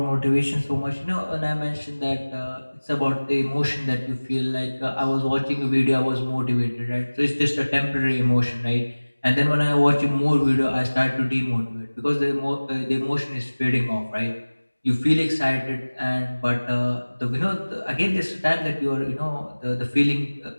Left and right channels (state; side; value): inverted; both; correlation -1.00